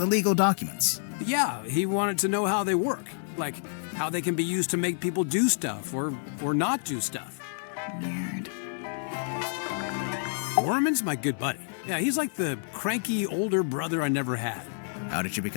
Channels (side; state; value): right; silent; digital silence